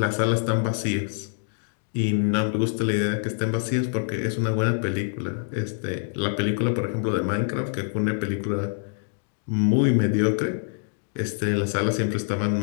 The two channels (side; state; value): right; silent; digital silence